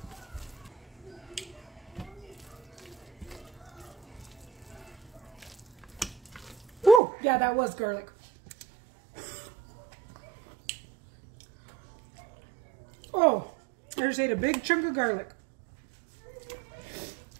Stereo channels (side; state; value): left; drops out; at 7.0 s